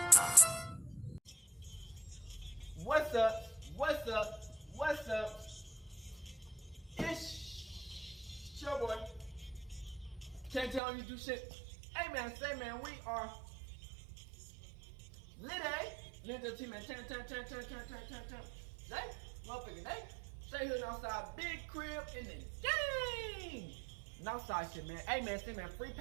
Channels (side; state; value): left; drops out; at 10.8 s